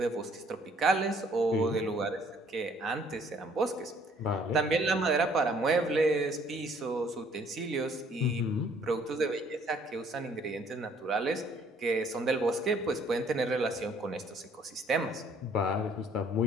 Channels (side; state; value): both; normal; correlation 0.61